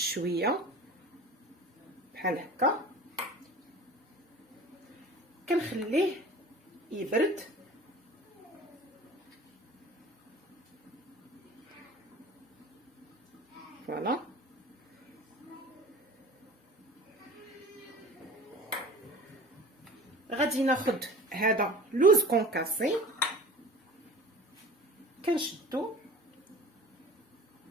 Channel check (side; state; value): both; normal; correlation 0.40